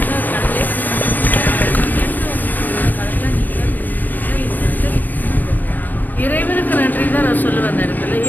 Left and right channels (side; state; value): right; late; 0.087 ms